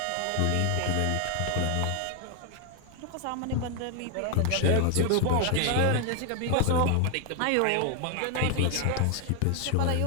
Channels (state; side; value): different; both; correlation 0.00